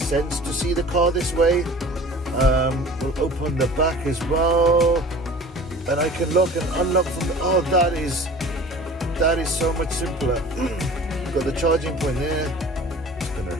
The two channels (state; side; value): normal; both; correlation 0.43